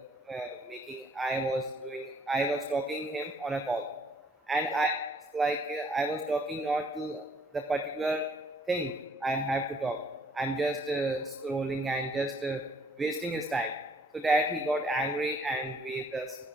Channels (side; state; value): both; normal; correlation 0.63